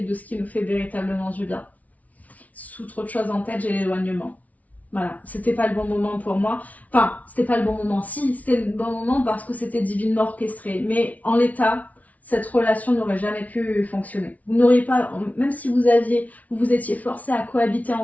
et de ce qui nous fait véritablement du bien. Sous trop de choses en tête, j'ai l'éloignement. Voilà, c'était pas le bon moment pour moi. Enfin, c'était pas le bon moment. Si, c'était le bon moment parce que c'était divinement orchestré. Mais en l'état, cette relation n'aurait jamais pu fonctionner. Vous n'auriez pas, même si vous étiez forcés à cohabiter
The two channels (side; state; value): right; late; 0.071 ms